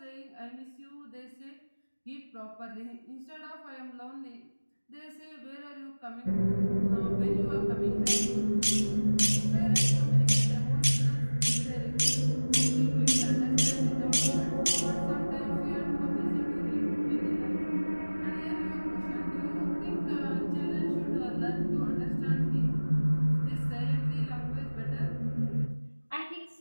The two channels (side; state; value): both; inverted; correlation -1.00